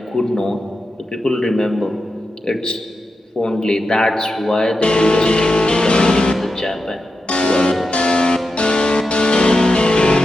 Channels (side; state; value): both; normal; correlation 0.89